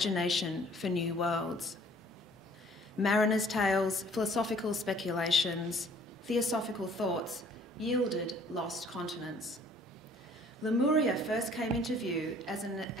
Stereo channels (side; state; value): both; normal; correlation 0.56